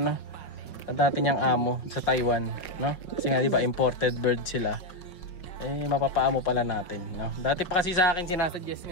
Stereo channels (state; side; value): late; right; 5.4 ms